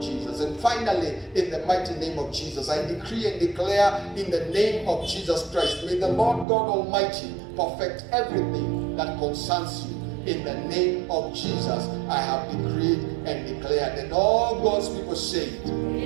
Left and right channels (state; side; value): drops out; left; at 6.5 s